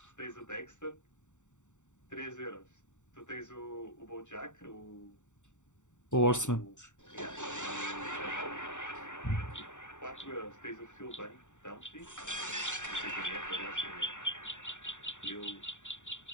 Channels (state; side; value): late; right; 0.85 ms